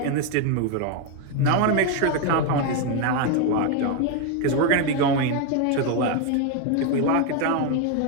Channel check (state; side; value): different; both; correlation 0.01